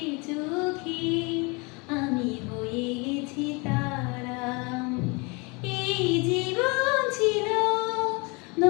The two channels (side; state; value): right; quieter; 29.2 dB